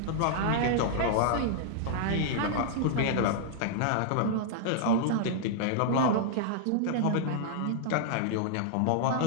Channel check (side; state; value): both; different; correlation -0.01